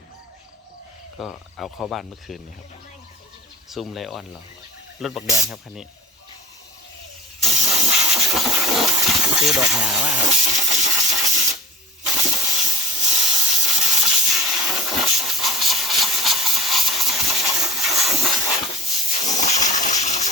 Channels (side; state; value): both; normal; correlation 0.41